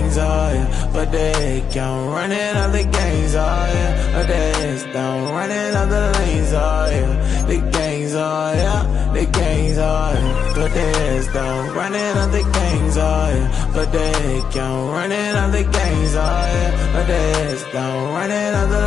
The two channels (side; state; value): right; quieter; 7.0 dB